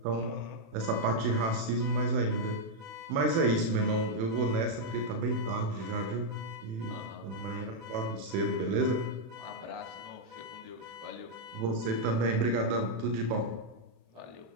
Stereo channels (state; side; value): late; left; 36 ms